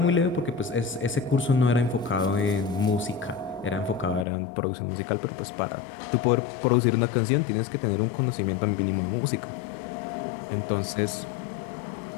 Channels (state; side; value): drops out; right; at 4.2 s